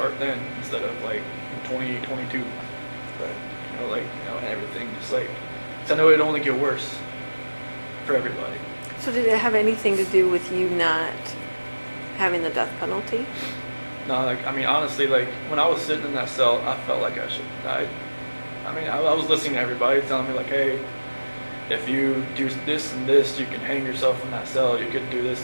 then instead of like in 2022. Right. You know, like, you know, and everything just like, 'cause I know it'd only get worse for everybody. So did it have anything to do with you not having the death penalty? No, like, I mean, honestly, like, when I was sitting in that cell, I felt like I should have died. I mean, I was listening to everybody telling me, like, hey, if you do this and this, you can hang yourself in that cell. You could do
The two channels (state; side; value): inverted; both; correlation -1.00